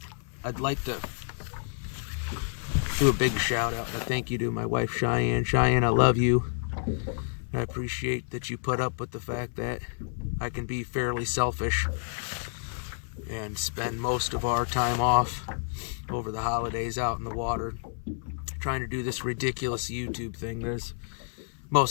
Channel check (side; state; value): right; silent; 58 dB below the other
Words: I'd like to do a big shout out and a thank you to my wife Cheyenne. Cheyenne, I love you. I appreciate that you put up with the fact that I can be fairly selfish and spend most of our time off over the holidays out in the water trying to do this ridiculous YouTube thing. There's